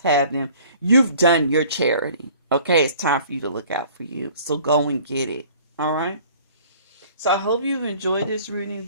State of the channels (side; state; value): both; inverted; correlation -0.51